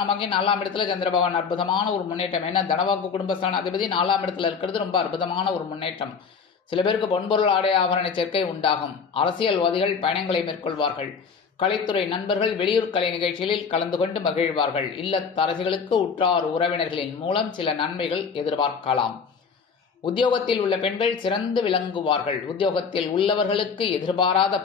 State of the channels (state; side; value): quieter; right; 5.9 dB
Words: 4ஆம் இடத்துல சந்திர பகவான் அற்புதமான ஒரு முன்னேற்றம். ஏன்னா தனவாக்கு குடும்பஸ்தான அதிபதி 4ஆம் இடத்துல இருக்கிறது ரொம்ப அற்புதமான ஒரு முன்னேற்றம். சில பேருக்கு பொன்பொருள் ஆடை ஆபரண சேர்க்கை உண்டாகும். அரசியல்வாதிகள் பயணங்களை மேற்கொள்வார்கள். கலைத்துறை நண்பர்கள் வெளியூர் கலை நிகழ்ச்சிகளில் கலந்து கொண்டு மகிழ்வார்கள். இல்லத்தரசிகளுக்கு உற்றார் உறவினர்களின் மூலம் சில நன்மைகள் எதிர்பார்க்கலாம். உத்தியோகத்தில் உள்ள பெண்கள் சிறந்து விளங்குவார்கள். உத்தியோகத்தில் உள்ளவர்களுக்கு எதிர்பாராத